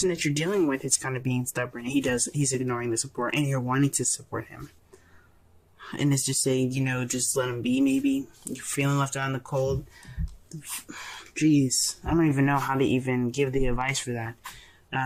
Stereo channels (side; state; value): both; identical; correlation 1.00